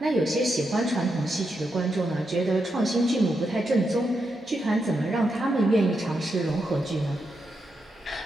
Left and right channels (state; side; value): normal; both; correlation 0.84